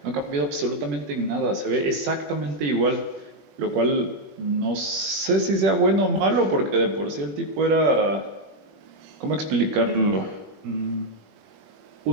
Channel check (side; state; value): left; late; 21 ms